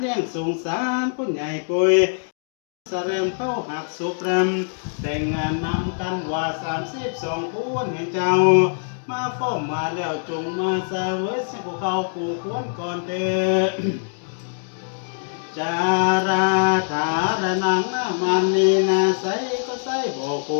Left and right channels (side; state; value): right; silent; digital silence